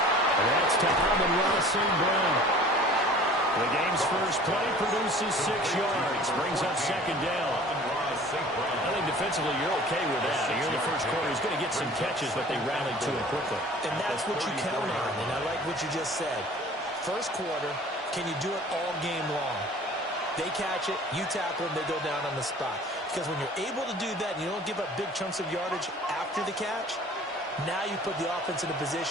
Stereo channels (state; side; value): normal; both; correlation 0.47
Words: And that's to Amon-Ra St. Brown. The game's first play produces 6 yards, brings up second down. I think defensively you're okay with that. Here in the first quarter, he's going to get some catches, but they rallied to him quickly. And that's what you count on, and I like what you just said. First quarter, can you do it all game long? They catch it, you tackle them, they go down on the spot. Because when you're able to do that and you don't give up big chunks of yardage after the catch, now you put the offense in a